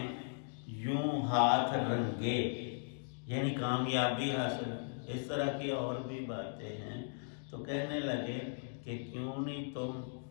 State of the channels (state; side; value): silent; right; digital silence